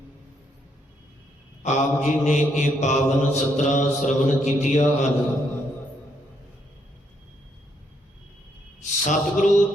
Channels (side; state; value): both; normal; correlation 0.74